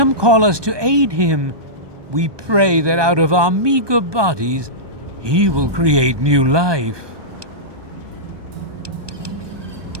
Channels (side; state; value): left; late; 1.2 ms